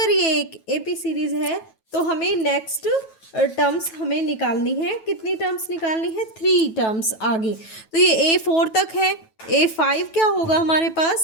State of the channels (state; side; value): late; right; 9.2 ms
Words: ये एक एपी सीरीज है तो हमें नेक्स्ट टर्म्स हमें निकालनी है। कितनी टर्म्स निकालनी है, 3 टर्म्स आगे। तो ये a4 तक है, a5 क्या होगा हमारे